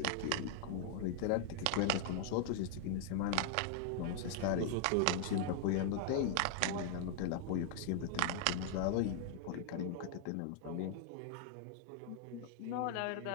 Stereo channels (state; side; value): different; both; correlation 0.00